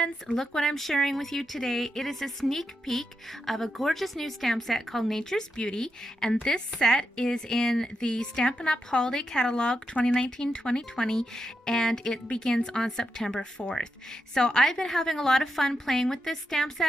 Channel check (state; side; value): normal; both; correlation 0.85